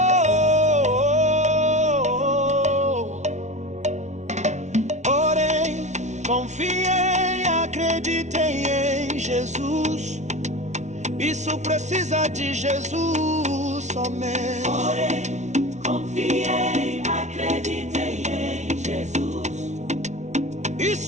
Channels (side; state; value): left; late; 0.33 ms